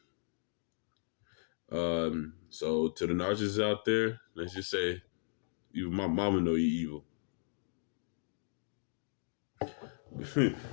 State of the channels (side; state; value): right; silent; digital silence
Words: So to the narcissists out there, let's just say, even my mama know you evil.